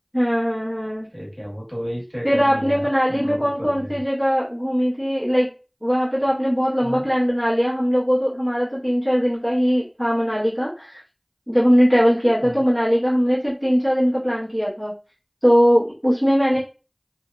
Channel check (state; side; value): identical; both; correlation 1.00